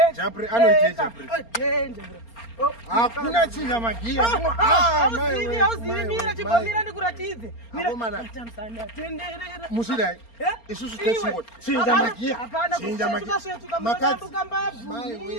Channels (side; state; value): right; late; 4.3 ms